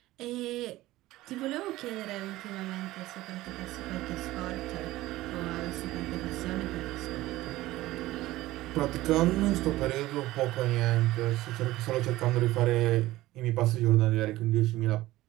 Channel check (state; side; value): quieter; left; 17.0 dB